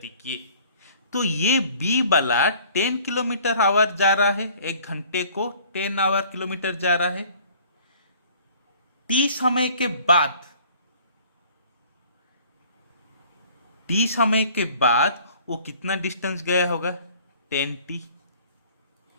की। तो ये बी वाला 10 किलोमीटर आवर जा रहा है, एक घंटे को 10 आवर किलोमीटर जा रहा है। टी समय के बाद, टी समय के बाद वो कितना डिस्टेंस गया होगा, 10t,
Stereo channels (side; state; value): both; inverted; correlation -0.53